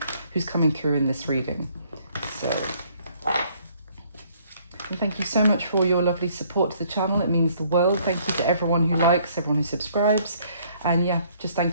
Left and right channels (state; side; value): inverted; both; correlation -0.63